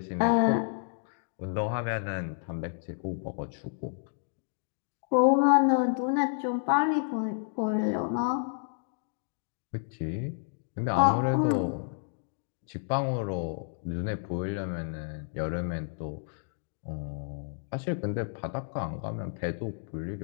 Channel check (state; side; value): silent; right; digital silence